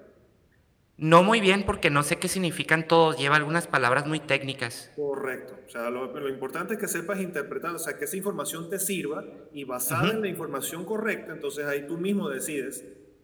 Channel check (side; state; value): both; identical; correlation 1.00